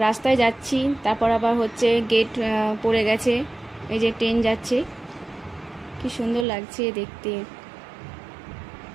রাস্তায় যাচ্ছি, তারপর আবার হচ্ছে গেট পড়ে গেছে, এই যে ট্রেন যাচ্ছে, কি সুন্দর লাগছে দেখতে,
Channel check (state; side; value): drops out; left; at 6.5 s